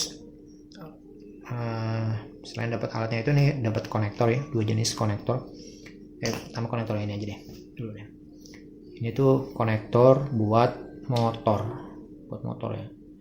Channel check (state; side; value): identical; both; correlation 1.00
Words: selain dapat alatnya itu nih dapat konektor ya 2 jenis konektor pertama konektor ini aja deh dulu deh ini tuh konektor buat motor ya